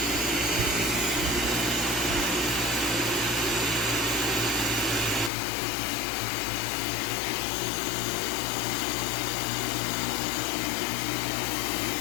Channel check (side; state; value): right; drops out; at 5.3 s